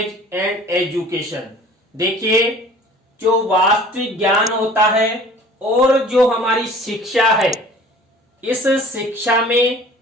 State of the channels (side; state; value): both; normal; correlation 0.47